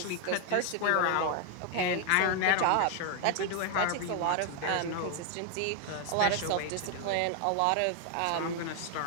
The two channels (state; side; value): different; both; correlation 0.01